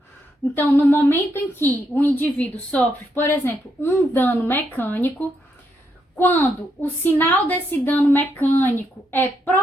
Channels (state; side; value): normal; both; correlation 0.79